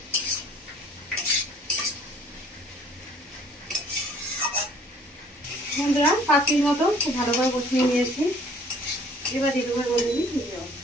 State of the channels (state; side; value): normal; both; correlation 0.55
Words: বন্ধুরা 5 মিনিট মতো খুব ভালো করে কষিয়ে নিয়েছি। এবার দিয়ে দেবো মধ্যে জল।